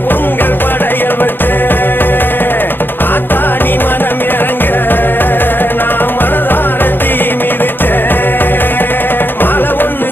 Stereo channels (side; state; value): right; late; 0.097 ms